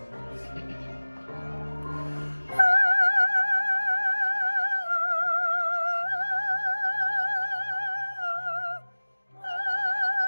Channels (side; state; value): both; inverted; correlation -1.00